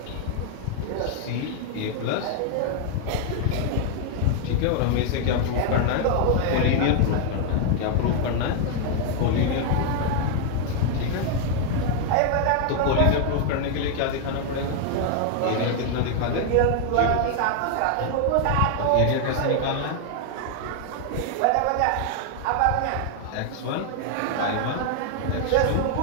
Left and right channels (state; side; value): different; both; correlation 0.00